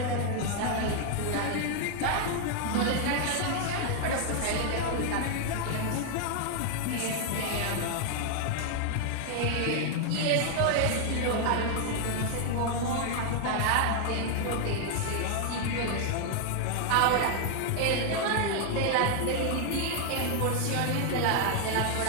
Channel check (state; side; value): different; both; correlation 0.00